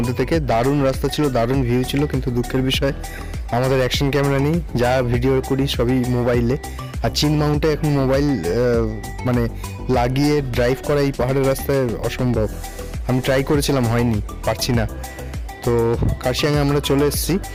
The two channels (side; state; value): both; identical; correlation 1.00